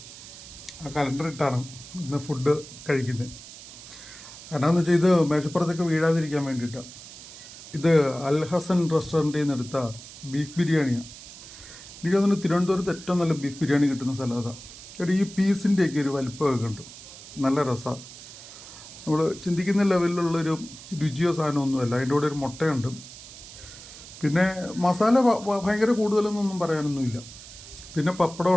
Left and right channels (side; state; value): right; noise; hiss, 16 dB below the sound